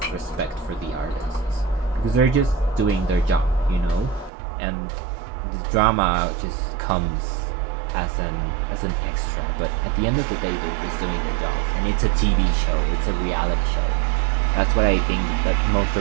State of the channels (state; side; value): drops out; left; at 4.3 s